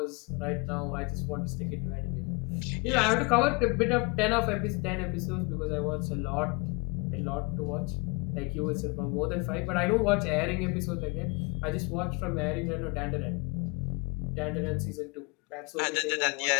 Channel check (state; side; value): quieter; right; 29.6 dB